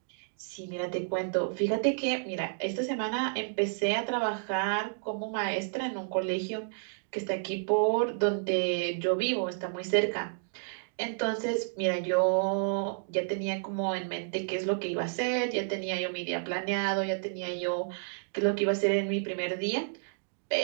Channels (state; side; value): silent; left; digital silence